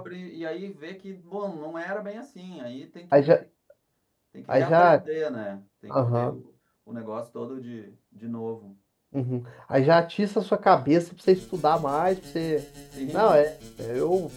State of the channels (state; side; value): identical; both; correlation 1.00